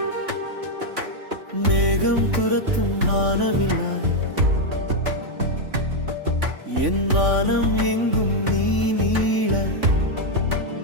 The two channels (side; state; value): left; late; 3.5 ms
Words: மேகம் துரத்தும் வானவில்லாய், என் வானம் எங்கும் நீ நீள.